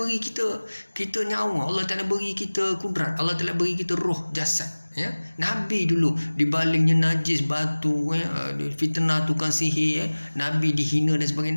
kita nyawa, Allah Ta'ala beri kita kudrat, Allah Ta'ala beri kita roh, jasad. Nabi dulu dibalingnya najis, batu, fitnah tukang sihir, Nabi dihina dan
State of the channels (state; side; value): inverted; both; correlation -1.00